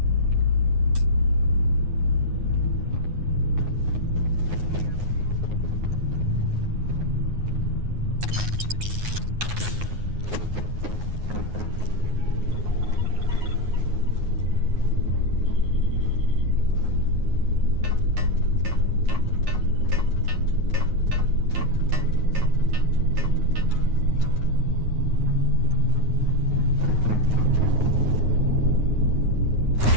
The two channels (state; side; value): late; left; 9.5 ms